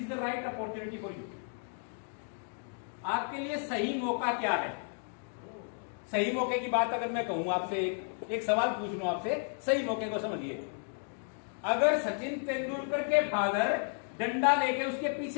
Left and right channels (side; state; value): right; silent; 56 dB below the other